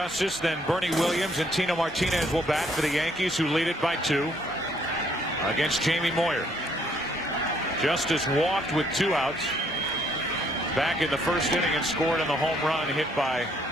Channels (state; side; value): normal; both; correlation 0.67